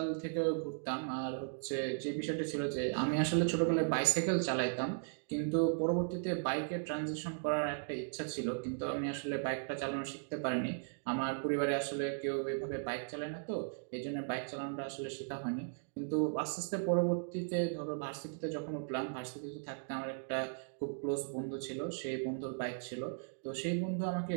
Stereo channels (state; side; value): silent; left; digital silence